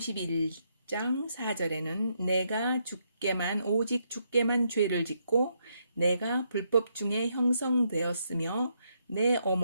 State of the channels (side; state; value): both; inverted; correlation -0.77